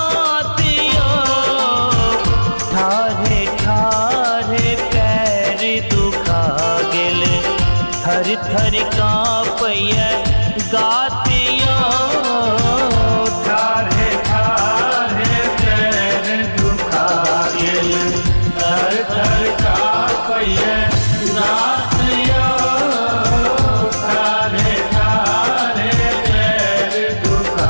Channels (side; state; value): both; inverted; correlation -1.00